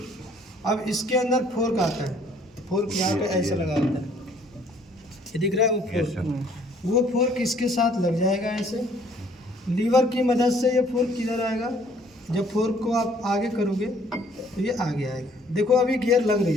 अब इसके अंदर फोर्क आता है, फोर्क यहाँ पे ऐसा लगा होता है, ये दिख रहा है वो फोर्क। वो फोर्क इसके साथ लग जाएगा ऐसे, लीवर की मदद से ये फोर्क किधर आएगा, जब फोर्क को आप आगे करोगे तो ये आगे आएगा। देखो अभी गियर लग नहीं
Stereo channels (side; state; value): both; normal; correlation 0.60